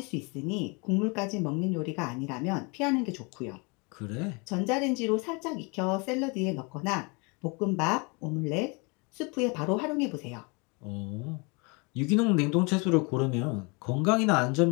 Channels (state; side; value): quieter; right; 30.4 dB